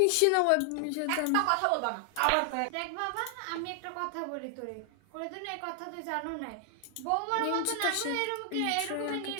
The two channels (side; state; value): both; different; correlation 0.00